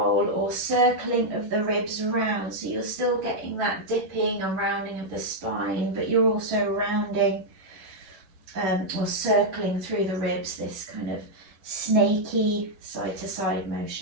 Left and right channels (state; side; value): late; left; 11 ms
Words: or circling of the ribs round. So you're still getting that dipping and rounding of the spine, but you're also rounding or circling through the ribs, this kind of snaky side to side